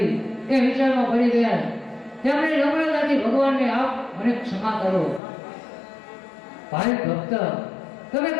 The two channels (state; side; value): drops out; right; at 5.2 s